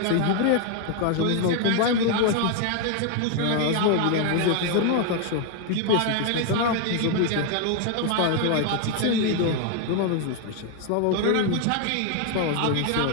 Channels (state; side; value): different; both; correlation 0.00